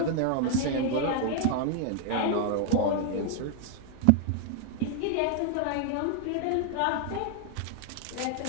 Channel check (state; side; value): different; both; correlation 0.00